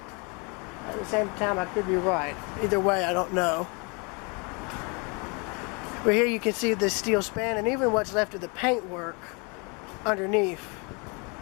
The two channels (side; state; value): right; quieter; 32.1 dB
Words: at the same time, I could be right. Either way, I don't know. But here you can see this steel span and even what's left of the paintwork underneath.